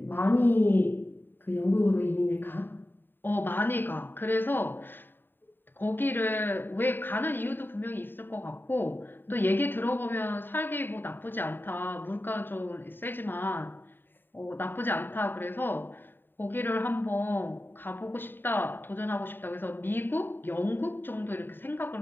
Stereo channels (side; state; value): right; late; 0.095 ms